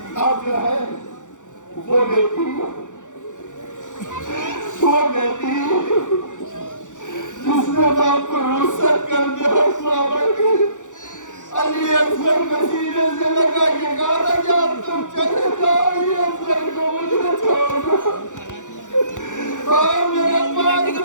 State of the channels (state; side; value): late; right; 0.86 ms